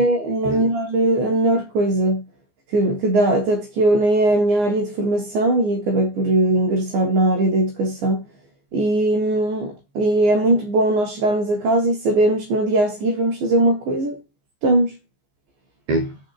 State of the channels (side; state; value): left; late; 14 ms